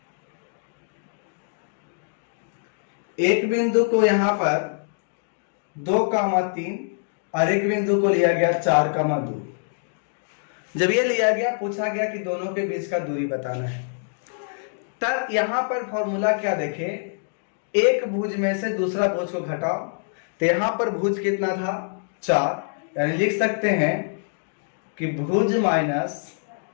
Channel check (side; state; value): right; silent; digital silence